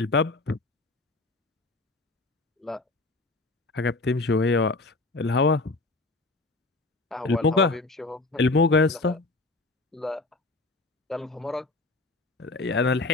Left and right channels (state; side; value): quieter; right; 3.2 dB